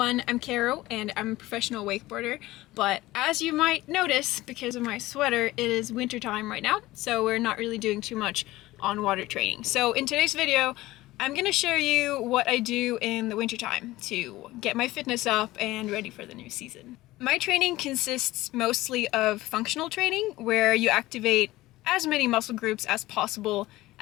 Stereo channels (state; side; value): quieter; right; 17.8 dB